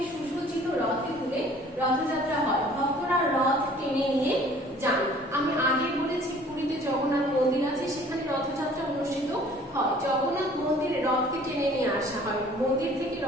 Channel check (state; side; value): normal; both; correlation 0.53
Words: সুসজ্জিত রথে তুলে রথযাত্রা হয়। ভক্তরা রথ টেনে নিয়ে যান। আমি আগে বলেছি পুরীতে জগন্নাথ মন্দির আছে, সেখানে রথযাত্রা অনুষ্ঠিত হয়। জগন্নাথ মন্দিরে রথকে টেনে নিয়ে আসা হয়, মন্দির থেকে